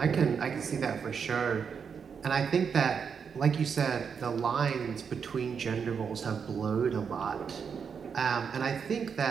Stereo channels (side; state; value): left; quieter; 6.5 dB